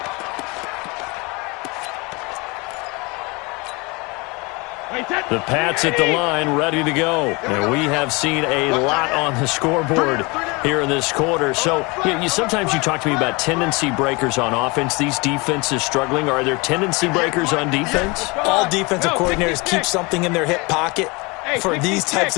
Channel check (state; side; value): quieter; right; 26.8 dB